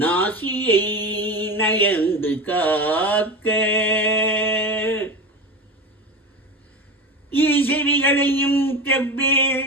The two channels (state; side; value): normal; both; correlation 0.25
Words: நயந்து காக்க ஈசெவிகளையும்